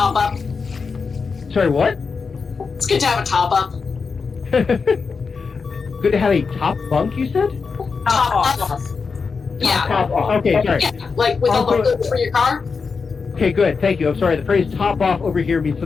Sorry, what? It's good to have a top-up. Good to have a top bunk, you said? Top-up. Yeah. Top off. Okay, sorry. Yeah, like with all the fluids for your car. Okay, good. Thank you. I'm sorry. The phrase "top off" over here means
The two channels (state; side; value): quieter; right; 5.0 dB